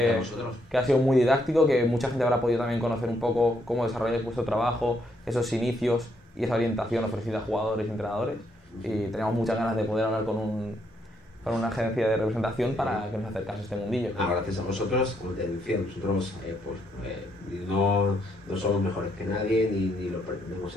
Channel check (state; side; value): normal; both; correlation 0.74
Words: ha sido muy didáctico, que mucha gente habrá podido también conocer un poco cómo desarrolláis vuestro trabajo, esos inicios y esa orientación ofrecida a jugadores y entrenadores, y teníamos muchas ganas de poder hablar con una agencia de representación para que nos acercase a este mundillo. Gracias a vosotros, como te decía, nosotros no somos mejores que nadie, ni lo pretendemos